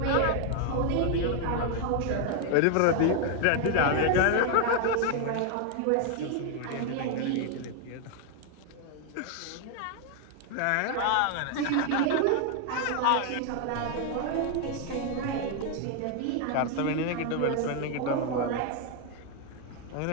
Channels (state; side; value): different; both; correlation 0.01